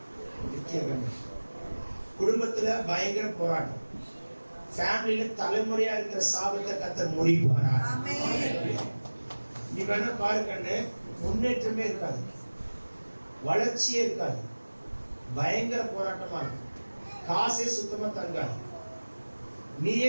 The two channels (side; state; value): both; inverted; correlation -1.00